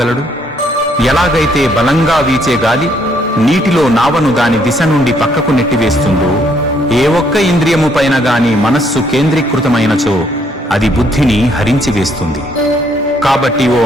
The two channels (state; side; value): normal; both; correlation 0.69